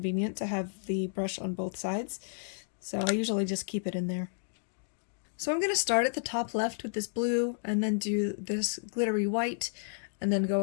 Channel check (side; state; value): right; silent; digital silence